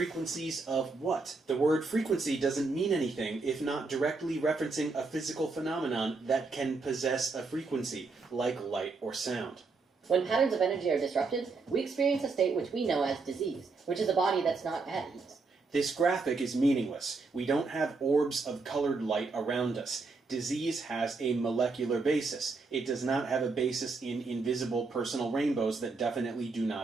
of what? The word frequency doesn't mean anything if not directly referencing a physical phenomenon that can possess a frequency, like light or sound. When patterns of energy are disrupted, we experience a state which we know as disease, which is a body that's not at ease. This graphic is meaningless. We don't have orbs of colored light around us. Disease has a molecular basis. It does not have a basis in invisible personal rainbows that definitely do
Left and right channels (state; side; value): quieter; left; 4.0 dB